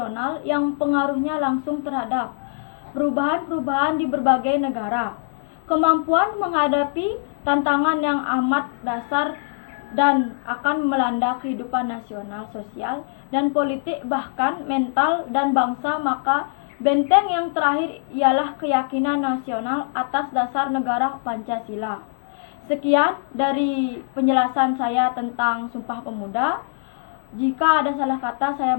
yang pengaruhnya langsung terhadap perubahan-perubahan di berbagai negara. Kemampuan menghadapi tantangan yang amat dasar dan akan melanda kehidupan nasional, sosial, dan politik, bahkan mental dan bangsa, maka benteng yang terakhir ialah keyakinan nasional atas dasar negara Pancasila. Sekian dari penjelasan saya tentang Sumpah Pemuda. Jika ada salah kata, saya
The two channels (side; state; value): right; silent; 60 dB below the other